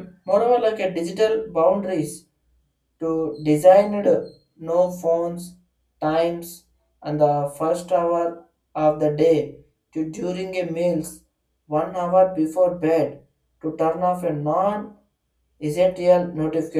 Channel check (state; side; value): identical; both; correlation 1.00